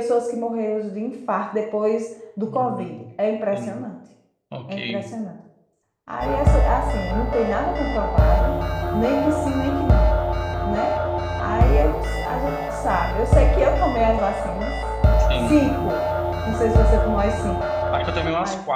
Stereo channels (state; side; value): identical; both; correlation 1.00